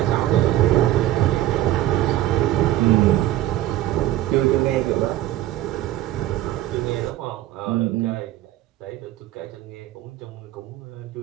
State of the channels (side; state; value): left; quieter; 14.3 dB